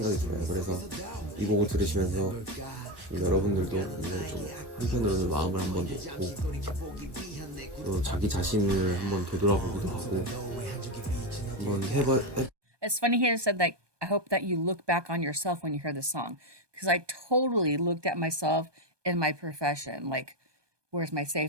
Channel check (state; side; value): late; left; 1.2 ms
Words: 들어요. 그래서 이 곡을 들으시면서 여러분들도 좀 한편으로는 마음을 한번 놓고 또 자기 자신을 한번 되돌아보기도 하고 한번 It's funny he said that I hope that you look back on yourself when you hear this song because I totally looked at myself in my profession, like where's my